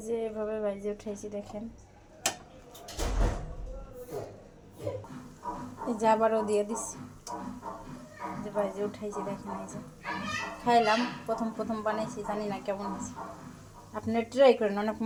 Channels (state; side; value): identical; both; correlation 1.00